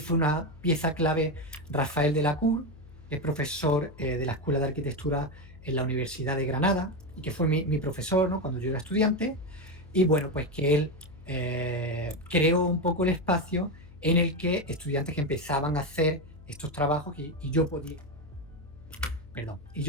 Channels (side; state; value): left; noise; hum, 20 dB below the sound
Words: una pieza clave Rafael de la Cour, que es profesor de la Escuela de Arquitectura en la Universidad de Granada y que fue mi profesor, ¿no? Cuando yo era estudiante. Y bueno, pues que él creó un poco el espacio en el que estudiantes que empezaban a hacer estos trabajos y yo